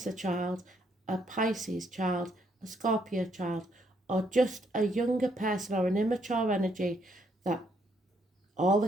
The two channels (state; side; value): normal; both; correlation 0.72